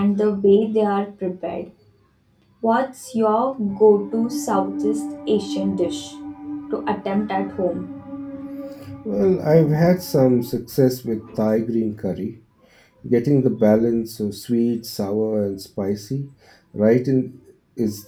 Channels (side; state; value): both; identical; correlation 1.00